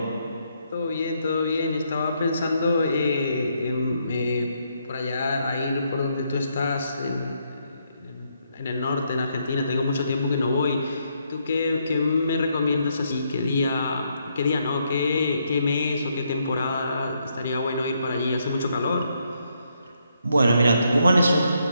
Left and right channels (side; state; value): both; inverted; correlation -0.76